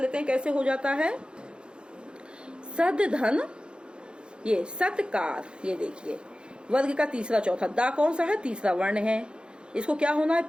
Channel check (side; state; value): left; late; 0.052 ms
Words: हैं कैसे हो जाता है। सद धन, ये सत्कार, ये देखिए वर्ग का तीसरा चौथा, दा कौन सा है? तीसरा वर्ण है, इसको क्या होना है?